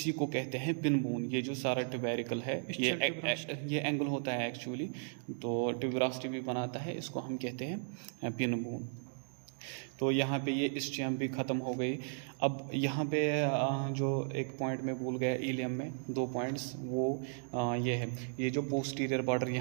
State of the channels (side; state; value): left; silent; digital silence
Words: को कहते हैं पिन बोन। ये जो सारा ट्यूबेरिकल है ये एंगल होता है एक्चुअली, तो ट्यूबरास्टी भी बनाता है, इसको हम कहते हैं पिन बोन। तो यहाँ पे ये इस्चियम भी ख़त्म हो गई। अब यहाँ पे जो एक पॉइंट में भूल गया इलियम में, 2 पॉइंट्स, वो ये है, ये जो पोस्टीरियर बॉर्डर